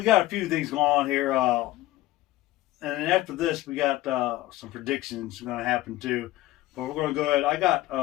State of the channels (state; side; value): quieter; right; 16.6 dB